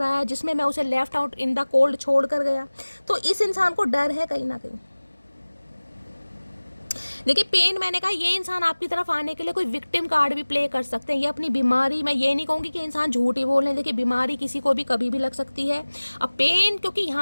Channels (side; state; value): both; inverted; correlation -1.00